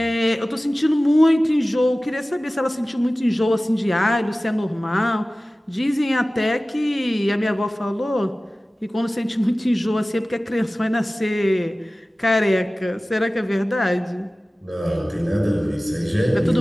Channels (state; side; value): normal; both; correlation 0.97